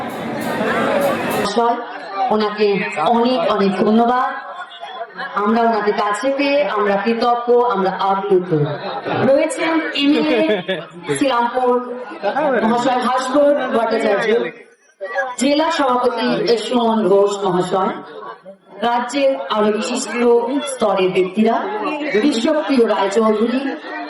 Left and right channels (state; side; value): identical; both; correlation 1.00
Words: ওনাকে অনেক অনেক ধন্যবাদ। আমরা ওনাদের কাছে পেয়ে আমরা কৃতজ্ঞ, আমরা আপ্লুত। রয়েছেন এমএলএ শ্রীরামপুর মহাশয় ভাস্কর ভট্টাচার্য, জেলা সভাপতি সুমন ঘোষ মহাশয়, রাজ্যের আরো বিশিষ্ট স্তরের ব্যক্তিরা, বিশ্বপ্রিয় রায়চৌধুরী,